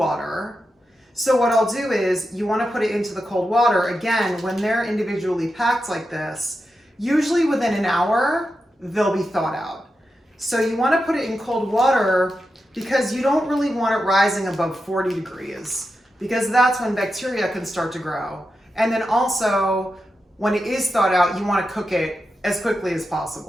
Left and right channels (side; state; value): both; normal; correlation 0.89